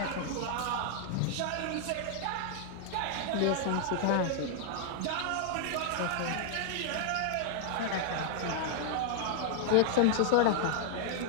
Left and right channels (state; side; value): different; both; correlation -0.01